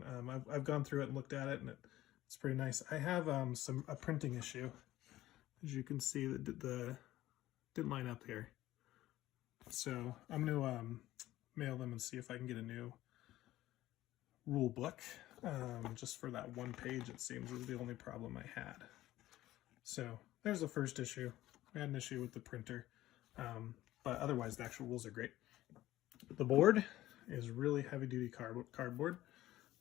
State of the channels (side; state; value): right; quieter; 15.3 dB